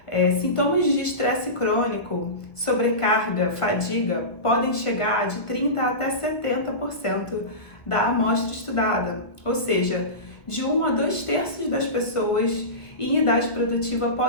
sintomas de estresse crônico, sobrecarga, fadiga podem chegar de 30% até 70% da amostra estudada, ou seja, de 1 a 2/3 das pessoas em idade produtiva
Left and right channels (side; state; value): right; late; 1.2 ms